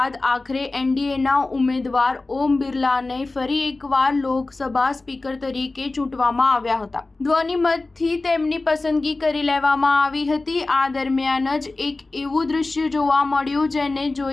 આખરે એનડીએના ઉમેદવાર ઓમ બિરલાને ફરી એકવાર લોકસભા સ્પીકર તરીકે ચૂંટવામાં આવ્યા હતા. ધ્વનિમતથી તેમની પસંદગી કરી લેવામાં આવી હતી. આ દરમિયાન જ એક એવું દૃશ્ય જોવા મળ્યું જેને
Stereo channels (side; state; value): right; quieter; 3.3 dB